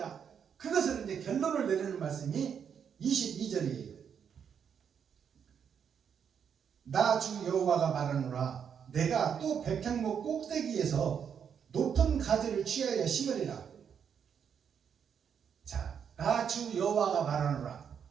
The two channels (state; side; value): quieter; left; 7.6 dB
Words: 그것을 이제 결론을 내리는 말씀이 22절이에요. 나 주 여호와가 말하노라. 내가 또 백향목 꼭대기에서 높은 가지를 취하여 심으리라. 자, 나 주 여호와가 말하노라.